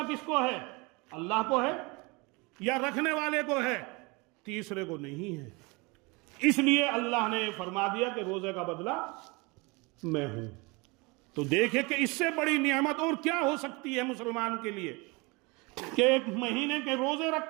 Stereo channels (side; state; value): left; quieter; 27.1 dB